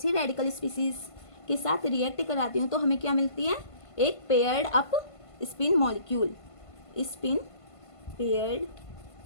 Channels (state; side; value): late; right; 1.5 ms